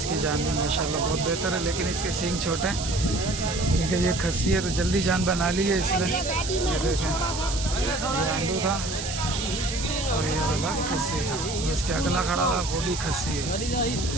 जान भी माशाल्लाह बहुत बेहतर है, लेकिन इसके सींग छोटे हैं क्योंकि ये खस्सी है तो जल्दी जान बना ली है इसलिए। ये देखें, ये आंडू था और ये वाला खस्सी था। इसके अगला खड़ा हुआ वो भी खस्सी है।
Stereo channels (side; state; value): right; noise; hiss, 7 dB below the sound